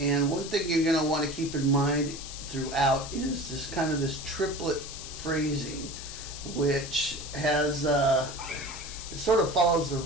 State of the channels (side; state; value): left; noise; hiss, 10 dB below the sound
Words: one thing you're going to want to keep in mind throughout is this triplet phrasing, which has it sort of follows the